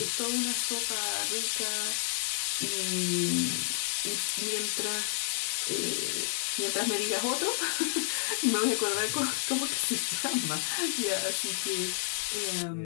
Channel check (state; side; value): silent; right; 58 dB below the other